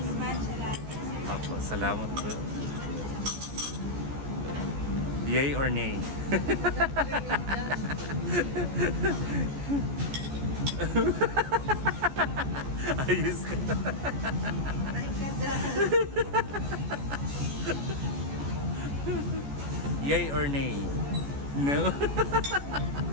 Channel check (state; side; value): late; left; 14 ms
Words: matcha latte. Apo, salamat po. Yay or nay? Ayos ka. Yay or nay? No?